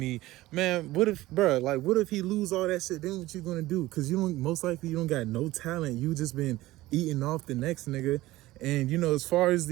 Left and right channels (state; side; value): quieter; left; 17.5 dB